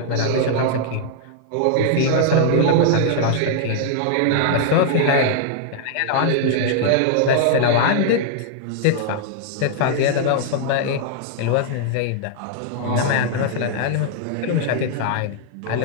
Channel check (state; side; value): different; both; correlation -0.01